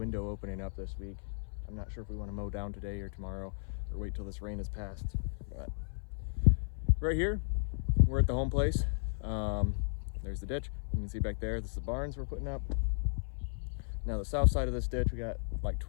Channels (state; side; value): silent; right; 55 dB below the other